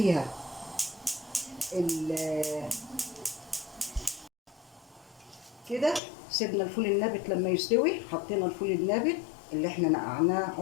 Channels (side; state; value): right; drops out; at 6.0 s